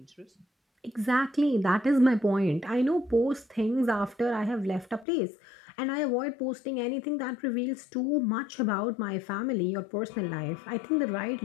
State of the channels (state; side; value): drops out; right; at 5.1 s